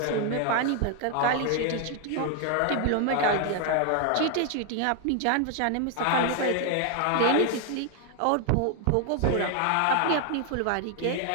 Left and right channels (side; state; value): both; different; correlation 0.00